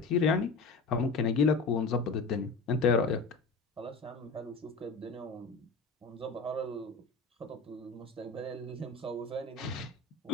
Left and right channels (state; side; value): quieter; right; 4.0 dB